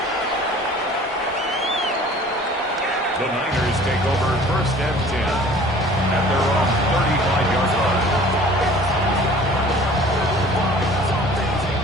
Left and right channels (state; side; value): normal; both; correlation 0.48